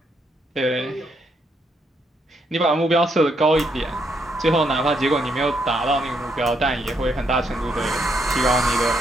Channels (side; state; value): both; normal; correlation 0.76